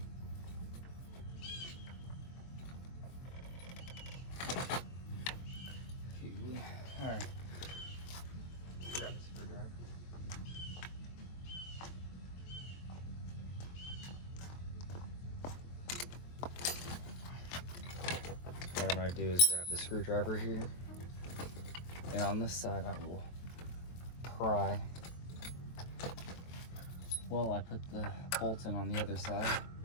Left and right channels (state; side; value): late; right; 23 ms